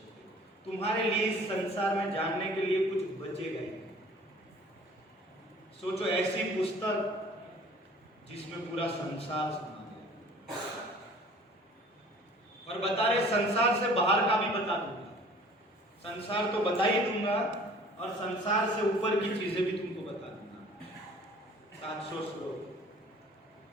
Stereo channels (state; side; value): normal; both; correlation 0.50